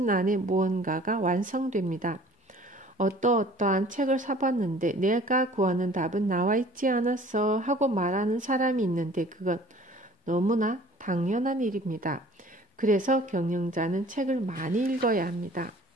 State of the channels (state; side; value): normal; both; correlation 0.50